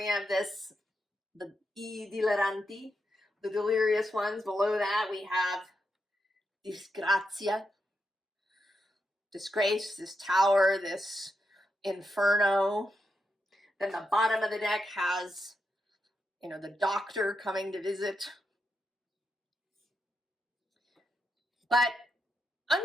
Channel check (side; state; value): both; normal; correlation 0.84